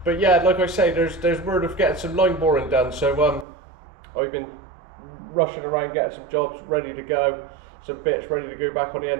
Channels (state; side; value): drops out; left; at 3.5 s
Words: yeah, like I say, there's word of getting some line boring done. So I've been rushing around getting some jobs ready to go, some bits ready to go back on the